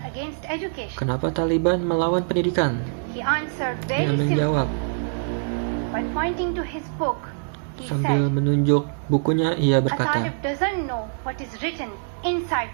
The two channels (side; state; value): left; silent; 63 dB below the other